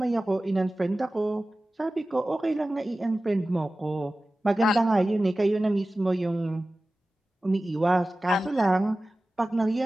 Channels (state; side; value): normal; both; correlation 0.96